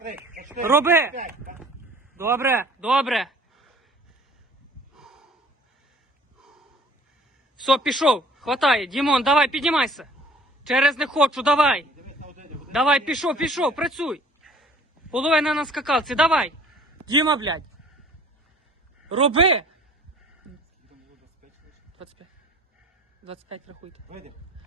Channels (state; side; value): normal; both; correlation 0.51